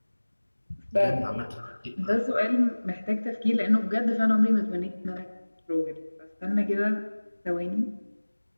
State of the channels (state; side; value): inverted; both; correlation -1.00